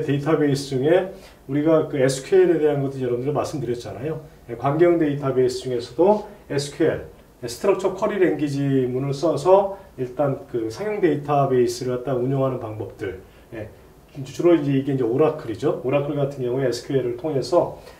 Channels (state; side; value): identical; both; correlation 1.00